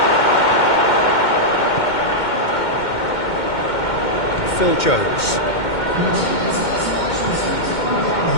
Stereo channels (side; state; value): right; late; 2.1 ms